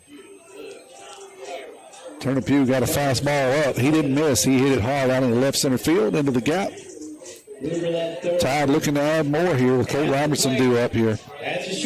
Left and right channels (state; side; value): identical; both; correlation 1.00